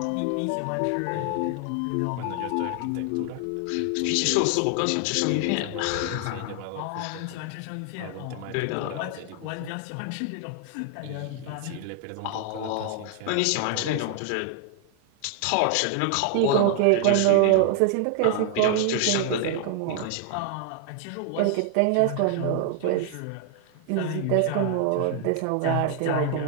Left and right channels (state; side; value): different; both; correlation 0.00